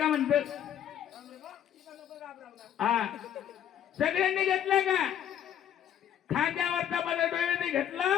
म्हणतो सगळ्यांनी घेतलाय का खांद्यावरचा पदर डोळ्याने घेतला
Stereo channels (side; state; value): right; quieter; 10.0 dB